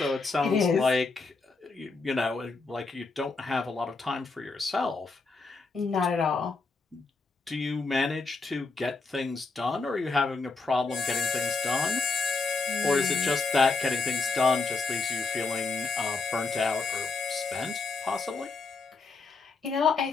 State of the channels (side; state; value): right; quieter; 4.2 dB